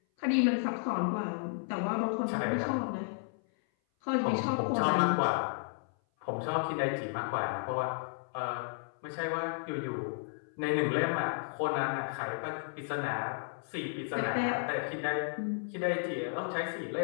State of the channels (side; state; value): right; silent; 56 dB below the other